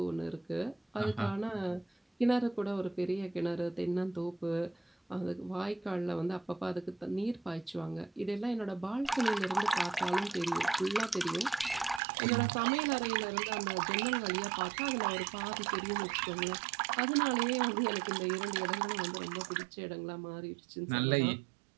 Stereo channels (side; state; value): left; drops out; at 12.0 s